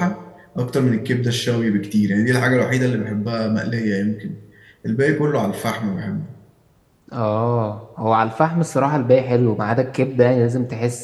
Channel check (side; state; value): both; identical; correlation 1.00